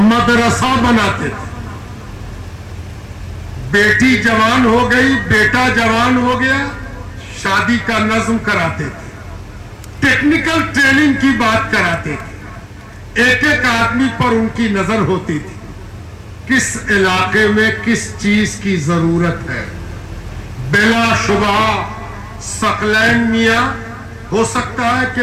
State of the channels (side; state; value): both; identical; correlation 1.00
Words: بناتے تھے. بیٹی جوان ہو گئی، بیٹا جوان ہو گیا، شادی کا نظم کراتے تھے، ٹیکنیکل ٹریننگ کی بات کراتے تھے. ایک ایک آدمی پر ان کی نظر ہوتی تھی، کس علاقے میں کس چیز کی ضرورت ہے. بلا شبہ ثقلین میاں ہو سکتا ہے